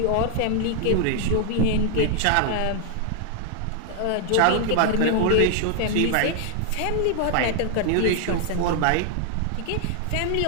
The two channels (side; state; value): both; different; correlation 0.00